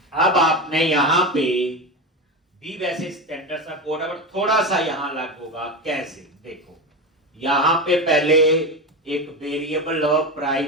अब आपने यहां पे भी वैसे स्टैंडर्ड सा कोड है, पर थोड़ा सा यहां अलग होगा। कैसे? देखो, यहां पे पहले एक variable of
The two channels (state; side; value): normal; both; correlation 0.20